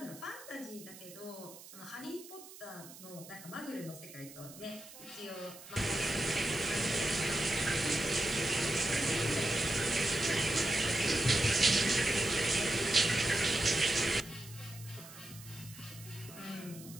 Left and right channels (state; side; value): noise; right; hiss, 17 dB below the sound